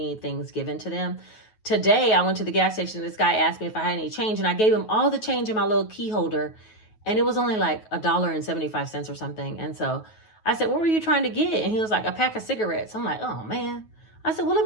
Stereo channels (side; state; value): right; late; 9.3 ms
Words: things given to them. Today, I went to the gas station. This guy asked me if I had any change and I gave him all the change in my little key holder. And it was only like $1.75 or something. And so I said, what were you trying to get? And he was like, a pack of cigarettes. I'm like, oh man. I said, well, let